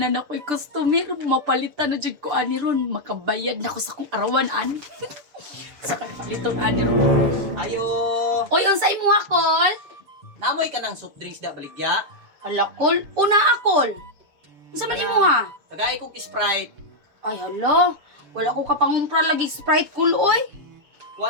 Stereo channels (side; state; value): left; late; 7.0 ms